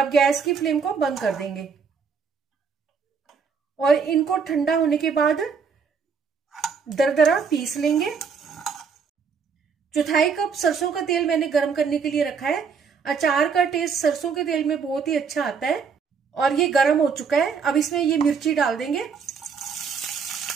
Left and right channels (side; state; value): left; quieter; 5.9 dB